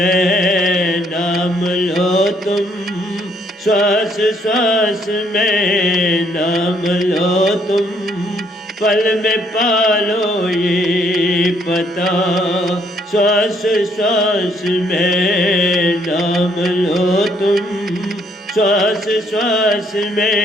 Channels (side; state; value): both; normal; correlation 0.68